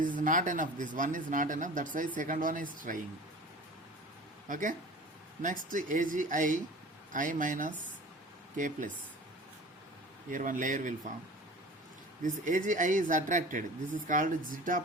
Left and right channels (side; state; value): both; normal; correlation 0.39